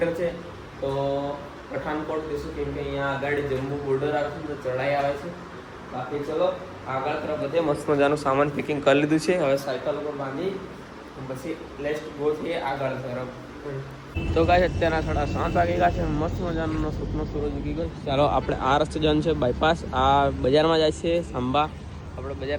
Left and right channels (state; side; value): identical; both; correlation 1.00